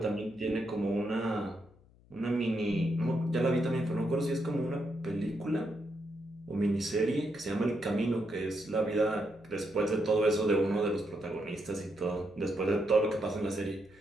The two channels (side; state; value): left; noise; hum, 27 dB below the sound